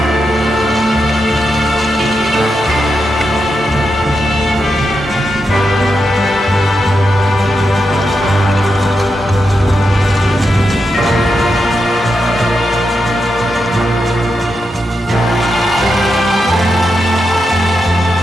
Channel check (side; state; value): both; normal; correlation 0.86